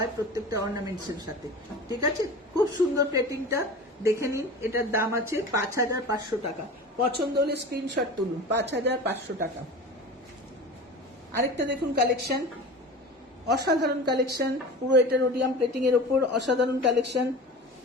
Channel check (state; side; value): normal; both; correlation 0.34